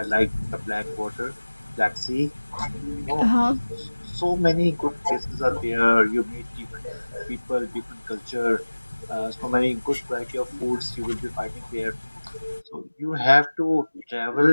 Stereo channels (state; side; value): inverted; both; correlation -1.00